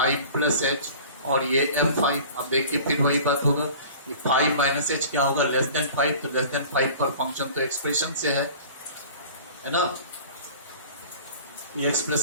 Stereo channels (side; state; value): both; inverted; correlation -0.43